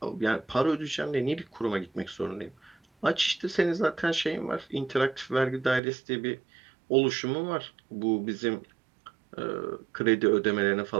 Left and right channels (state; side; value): drops out; left; at 5.8 s